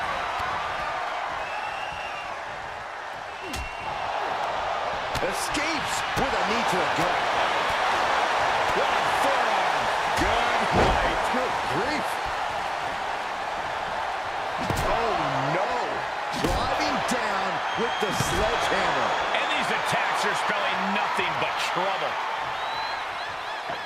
Escapes with a knee to the gut. What a forearm. Good night. Good grief. Oh, no. Driving down with the sledgehammer. And these attacks are spelling nothing but trouble.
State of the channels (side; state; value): both; identical; correlation 1.00